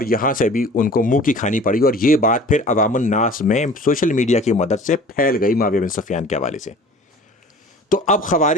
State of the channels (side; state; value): both; normal; correlation 0.45